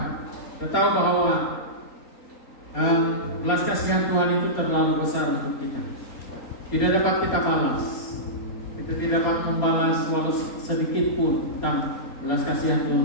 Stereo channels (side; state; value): right; late; 3.9 ms